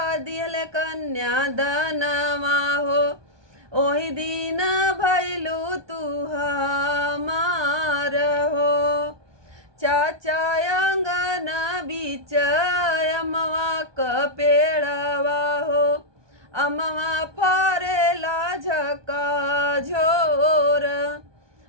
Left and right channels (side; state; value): left; late; 1.2 ms